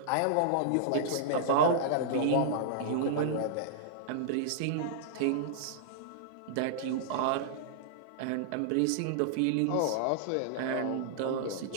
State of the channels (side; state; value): both; different; correlation -0.02